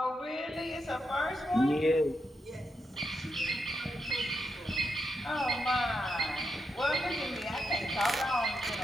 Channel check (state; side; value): normal; both; correlation 0.83